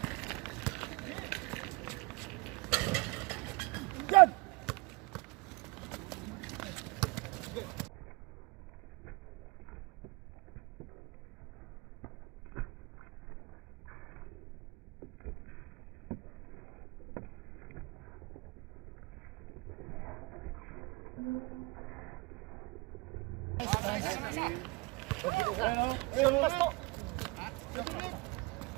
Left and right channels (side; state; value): left; quieter; 26.6 dB